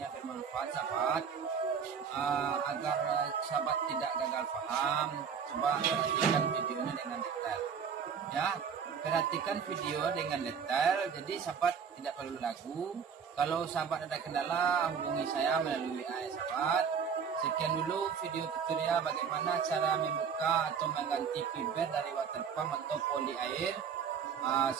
bermanfaat sahabat. Agar sahabat tidak gagal paham, coba perhatikan videonya dengan detail ya. Perhatikan video dengan detail, jadi sahabat tidak perlu ragu. Kalau sahabat ada kendala, hubungi saya melalui WA ya sahabat. Sekian dulu video tutorial bagaimana cara membuka atau mengganti fiber dari water pump atau poli air.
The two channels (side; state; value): left; quieter; 6.8 dB